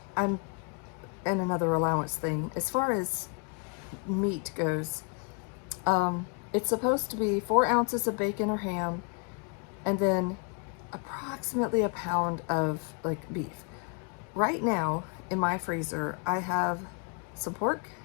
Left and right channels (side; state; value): right; quieter; 38.6 dB